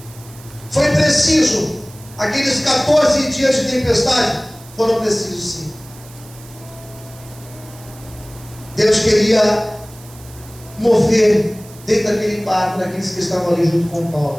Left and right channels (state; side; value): noise; right; hiss, 21 dB below the sound